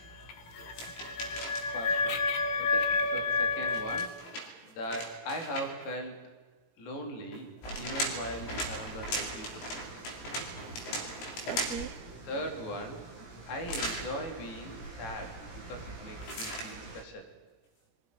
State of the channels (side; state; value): right; late; 18 ms